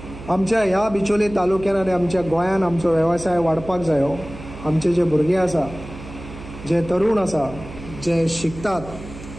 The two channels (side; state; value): right; noise; hum, 14 dB below the sound